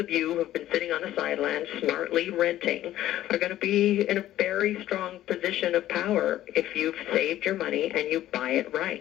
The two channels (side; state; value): right; quieter; 13.6 dB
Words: you who have been sitting on the sidelines smartly renting are going to be in a very strong position of power if you've saved your money and you buy it